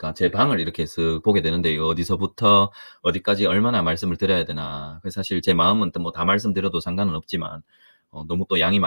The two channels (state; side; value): inverted; both; correlation -1.00